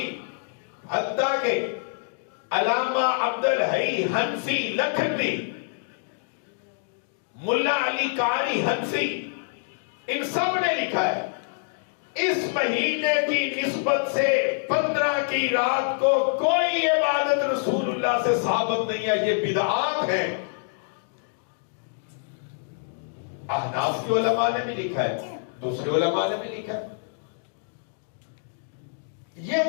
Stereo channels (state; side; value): silent; right; digital silence